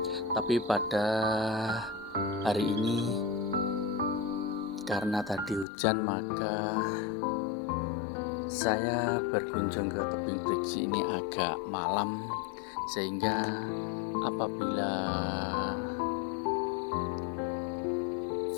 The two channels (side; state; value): right; drops out; at 5.7 s